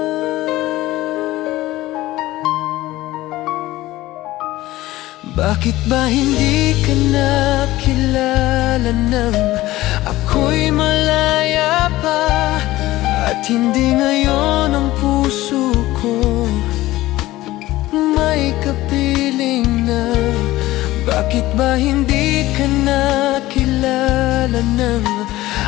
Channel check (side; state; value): right; quieter; 17.1 dB